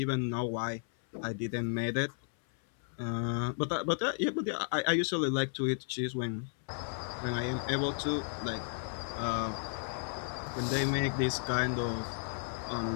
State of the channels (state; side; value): silent; right; 55 dB below the other